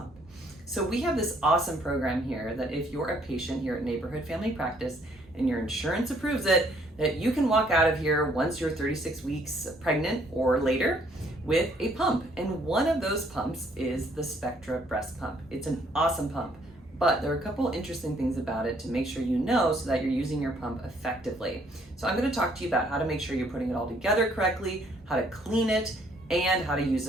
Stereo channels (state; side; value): normal; both; correlation 0.65